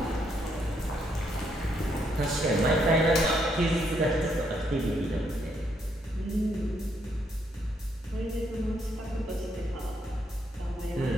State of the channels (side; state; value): both; normal; correlation 0.74